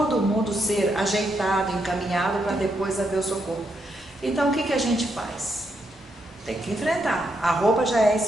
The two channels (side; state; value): both; normal; correlation 0.80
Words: mundo ser ajeitado, encaminhado para depois haver o socorro. Então o que a gente faz? Tem que enfrentar. A roupa já é